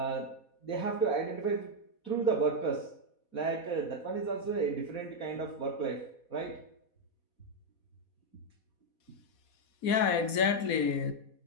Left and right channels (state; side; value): late; right; 4.2 ms